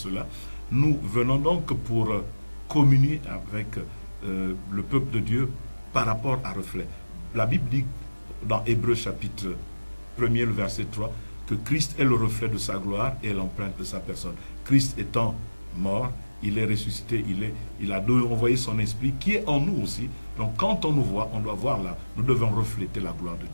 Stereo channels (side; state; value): both; inverted; correlation -1.00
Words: Nous venons donc pour communier avec le peuple de Dieu par rapport à Reflet. La Bible dit dans Hébreux chapitre 1er, le verset 3, que Christ est le reflet de sa gloire et l'empreinte de sa personne. Christ étant mort, il est ressuscité, il a envoyé son esprit qui est en nous aussi. Donc quand on nous voit, on doit voir là, nous devons refléter la gloire de